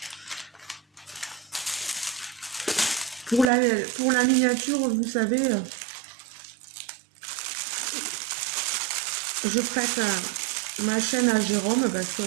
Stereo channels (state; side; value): drops out; left; at 3.5 s